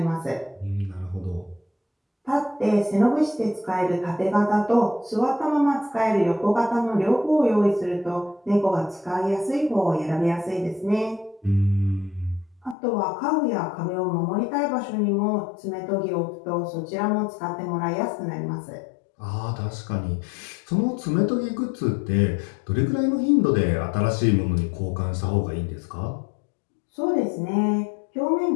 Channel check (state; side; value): drops out; right; at 12.8 s